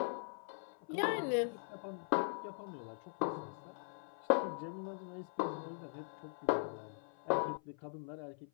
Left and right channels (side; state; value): right; silent; 50 dB below the other